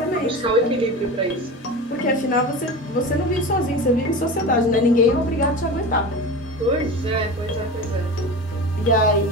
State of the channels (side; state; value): both; normal; correlation 0.29